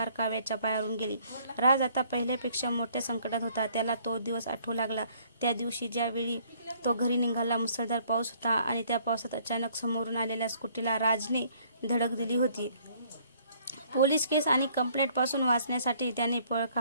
काव्याच्या पायावरून गेली. राज आता पहिल्यापेक्षा मोठ्या संकटात होता. त्याला तो दिवस आठवू लागला. त्या दिवशी ज्यावेळी तो घरी निघाला मुसळधार पाऊस होता आणि त्या पावसात अचानक समोरून आलेल्या स्कूटीला राजने धडक दिली होती. पोलीस केस आणि कंप्लेंटपासून वाचण्यासाठी त्याने पळ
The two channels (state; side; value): inverted; both; correlation -0.62